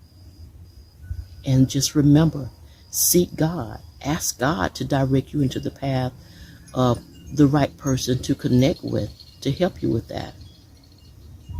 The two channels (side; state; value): both; identical; correlation 1.00